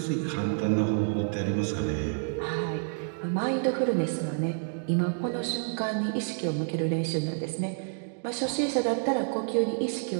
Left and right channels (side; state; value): left; silent; digital silence